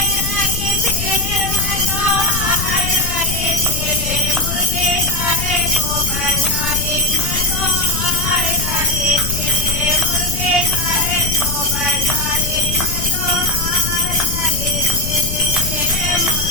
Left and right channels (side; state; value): left; noise; rumble, 5 dB below the sound